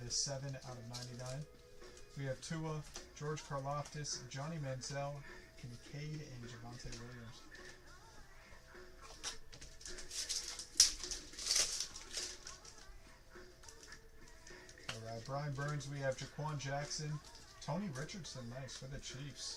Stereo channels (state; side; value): identical; both; correlation 1.00